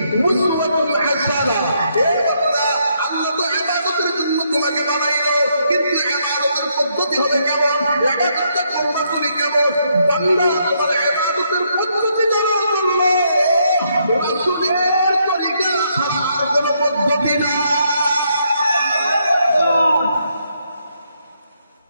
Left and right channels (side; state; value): both; inverted; correlation -0.75